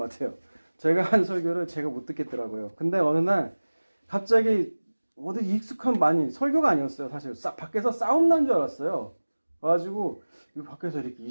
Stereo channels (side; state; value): both; inverted; correlation -1.00